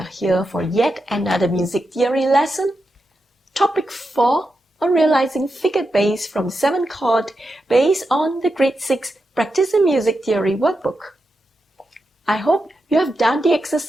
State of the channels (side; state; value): both; normal; correlation 0.87